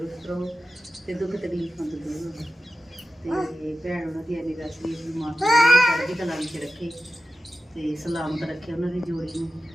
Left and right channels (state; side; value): normal; both; correlation 0.92